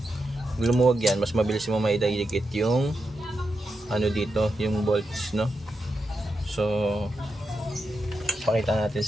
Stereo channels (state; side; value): normal; both; correlation 0.87